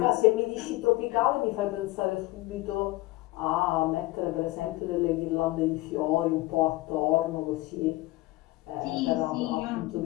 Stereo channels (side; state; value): right; quieter; 19.7 dB